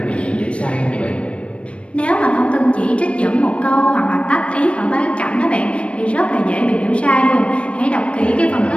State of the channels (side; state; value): right; late; 0.061 ms